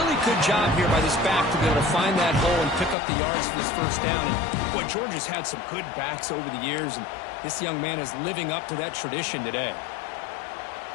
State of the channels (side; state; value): right; drops out; at 3.0 s